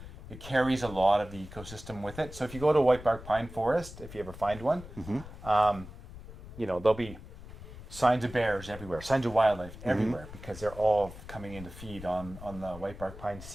it carries a lot of the ecosystem with it. So if you go to a whitebark pine forest, if you ever find one, there'll be signs of bears everywhere, signs of wildlife everywhere, because they're all coming in to feed on the whitebark pine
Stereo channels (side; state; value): left; noise; rumble, 14 dB below the sound